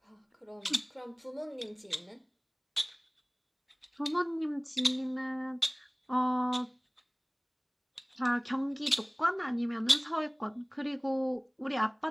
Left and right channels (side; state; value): both; identical; correlation 1.00